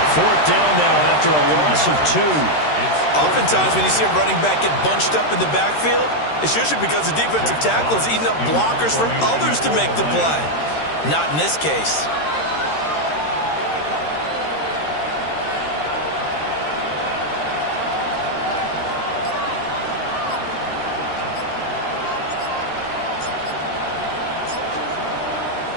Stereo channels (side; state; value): right; late; 13 ms